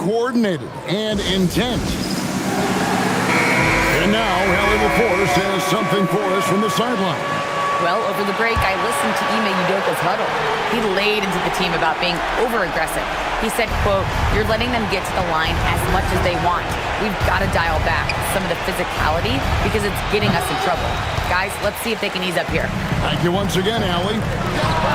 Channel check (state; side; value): identical; both; correlation 1.00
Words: and intent. And now, Allie LaForce has something for us from the sideline. Well, over the break, I listened to Ime Udoka's huddle. He laid into the team about being over-aggressive. He said, quote, "You're letting them get to the line as much as they want. We've got to dial back some of the physicality because it's getting us in trouble. Guys, let's see if they can ease up here." Thank you once again, Allie.